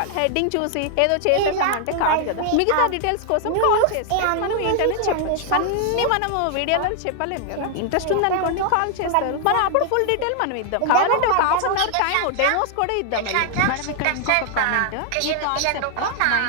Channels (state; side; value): different; both; correlation 0.00